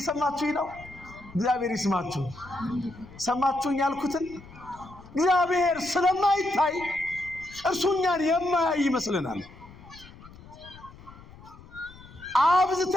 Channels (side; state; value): left; noise; rumble, 20 dB below the sound